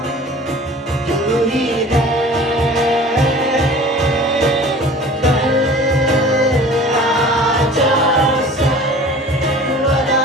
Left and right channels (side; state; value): both; normal; correlation 0.44